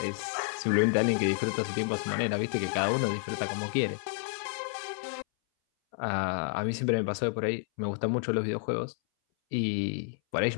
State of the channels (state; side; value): silent; right; 58 dB below the other